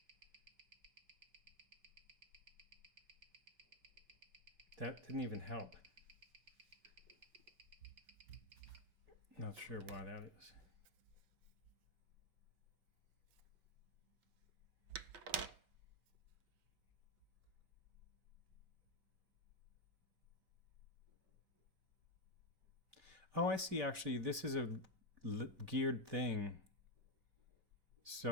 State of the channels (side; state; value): left; late; 5.2 ms